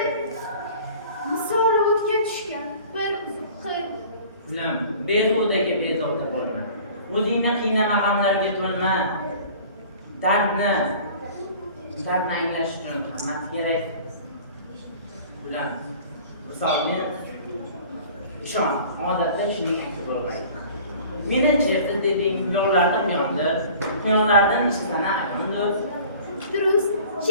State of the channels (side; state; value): both; inverted; correlation -0.46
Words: Misoli o'tga tushgan bir uzuq qil. Ulam, behudaga bezovta bo'lma. O'zingni qiynama g'amlarga to'lma. Dardni anglash uchun qimmat kerak. Ulam, misolni ishon, odatda shuning aksi bo'lmaydi. Meni chertib deding, yo'llardan yondi, quyonlardan ishlana ayondir. Durust,